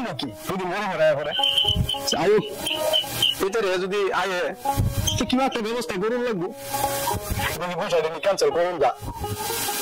নাকি 2 দিন মরে মরে করে আয়ুক ভিতরে যদি আয়ে কিংবা একটা ব্যবস্থা করুন লাগবো পয়সা দিন ক্যান্সেল করুন যা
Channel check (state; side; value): identical; both; correlation 1.00